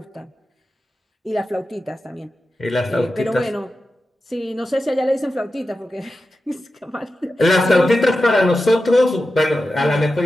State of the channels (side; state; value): both; normal; correlation 0.92